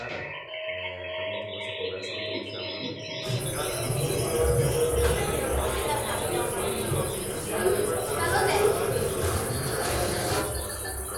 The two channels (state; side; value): identical; both; correlation 1.00